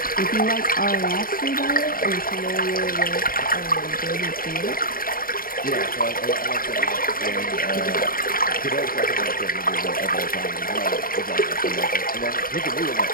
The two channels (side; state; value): right; late; 0.41 ms